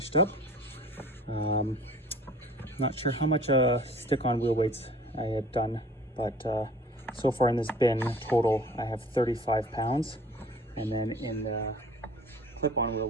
up. Not sure how much stick-on wheel weights I had done, but so far in this bin total, I have 35 pounds. And then in the clip-on wheel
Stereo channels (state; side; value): normal; both; correlation 0.48